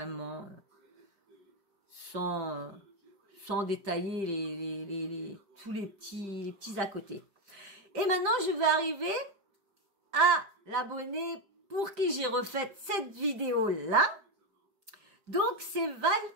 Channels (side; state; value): left; late; 5.1 ms